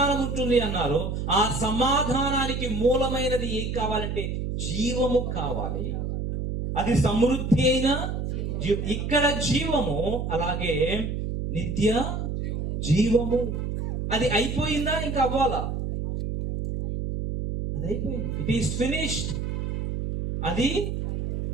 ఉంటుంది అన్నారు. ఆ సమాధానానికి మూలమైనది ఏం కావాలంటే జీవము కావాలి. అది సమృద్ధి అయిన ఇక్కడ జీవము, అలాగే నిత్య జీవము. అది అయిపోయిందా? ఇంకా అవ్వాలా? అది అయిపోయింది. It is finished. అది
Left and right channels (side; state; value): right; noise; hum, 3 dB below the sound